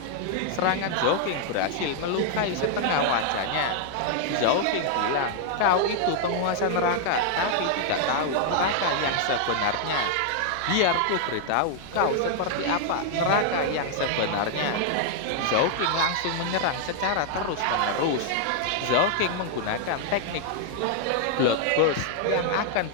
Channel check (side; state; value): both; different; correlation 0.00